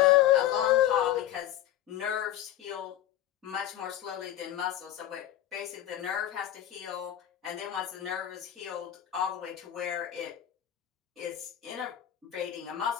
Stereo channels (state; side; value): quieter; right; 12.2 dB